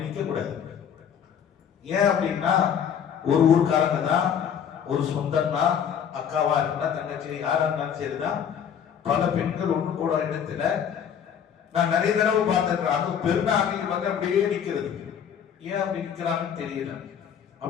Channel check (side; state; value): right; quieter; 8.2 dB